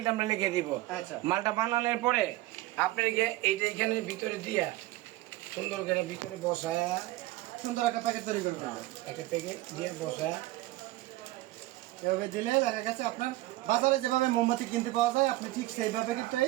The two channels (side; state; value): left; quieter; 17.9 dB